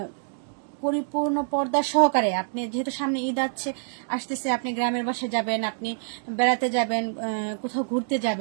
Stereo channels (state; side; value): silent; left; digital silence